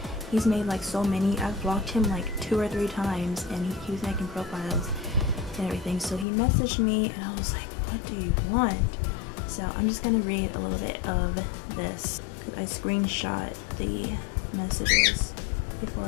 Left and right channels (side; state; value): right; drops out; at 6.2 s